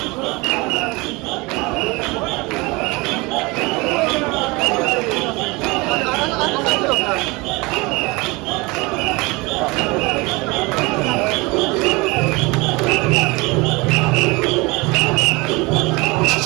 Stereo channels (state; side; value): quieter; left; 24.9 dB